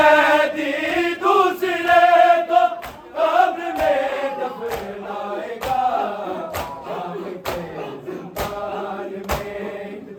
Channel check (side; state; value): both; identical; correlation 1.00